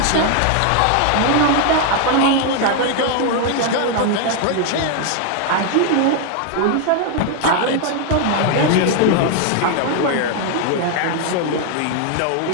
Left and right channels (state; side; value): different; both; correlation 0.01